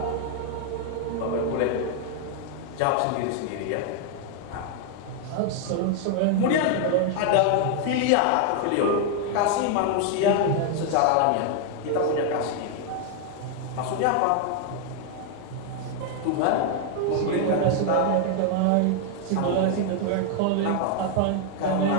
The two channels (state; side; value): different; both; correlation 0.00